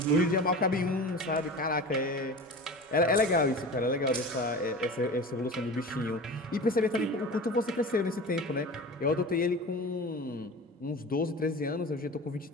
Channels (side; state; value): both; normal; correlation 0.33